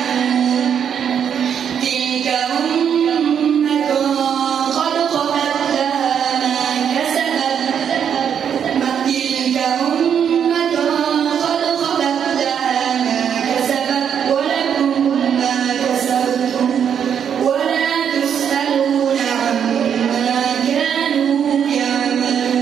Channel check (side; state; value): left; quieter; 8.1 dB